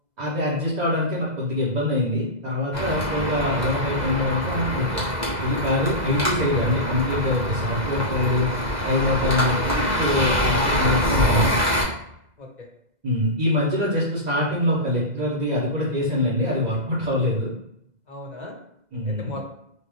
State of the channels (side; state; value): left; late; 2.0 ms